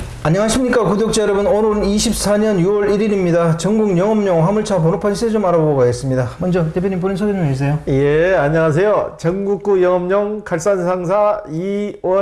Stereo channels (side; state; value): both; identical; correlation 1.00